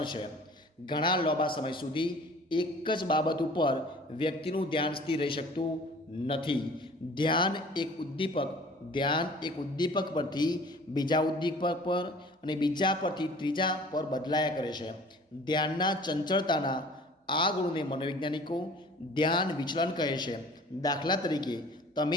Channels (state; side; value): normal; both; correlation 0.48